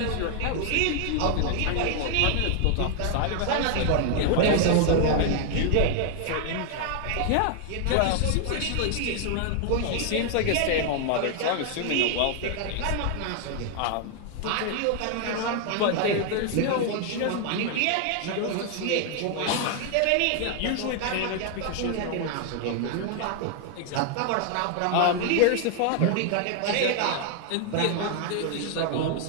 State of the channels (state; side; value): different; both; correlation 0.00